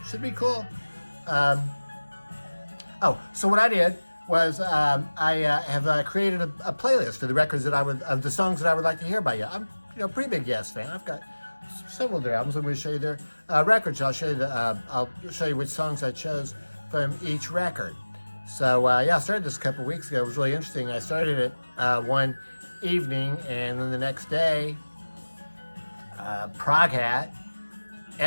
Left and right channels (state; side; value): inverted; both; correlation -1.00